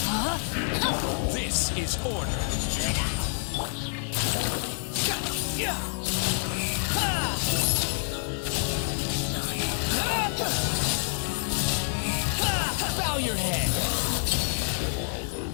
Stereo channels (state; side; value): silent; right; digital silence